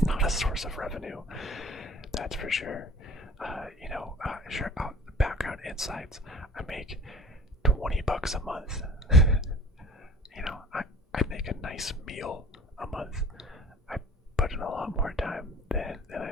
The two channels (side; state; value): both; normal; correlation 0.45